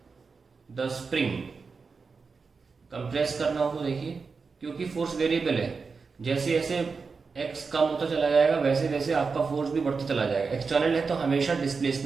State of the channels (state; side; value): quieter; left; 4.9 dB